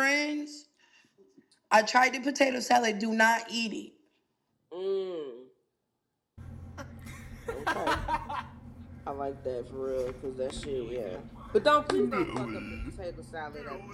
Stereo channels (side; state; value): both; identical; correlation 1.00